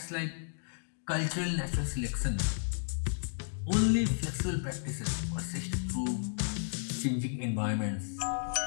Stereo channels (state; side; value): silent; right; digital silence